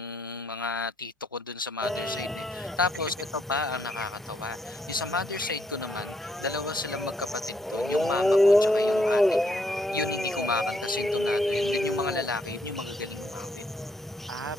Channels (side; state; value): both; normal; correlation 0.73